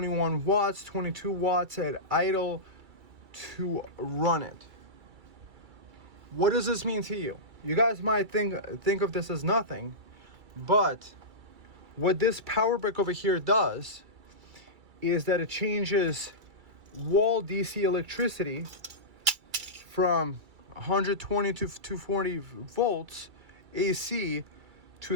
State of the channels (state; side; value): late; left; 2.3 ms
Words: watts, 22 watts at idle to run it. What does this mean to you? You guys might think of this as nothing, but what this power brick over here does is that it changes wall DC electricity from 120 to 240 volts AC to